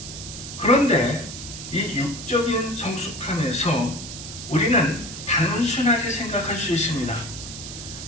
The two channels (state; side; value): noise; right; hiss, 10 dB below the sound